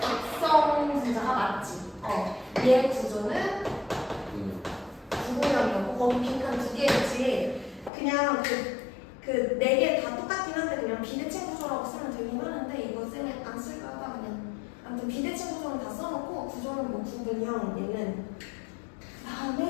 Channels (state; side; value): drops out; right; at 7.9 s